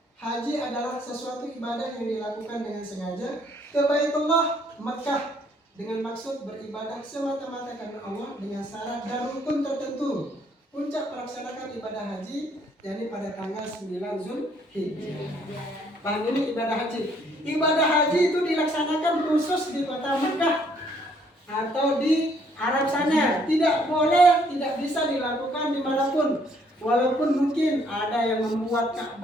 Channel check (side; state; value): both; normal; correlation 0.65